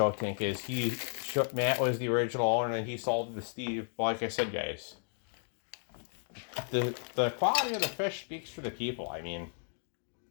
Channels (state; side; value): silent; right; 55 dB below the other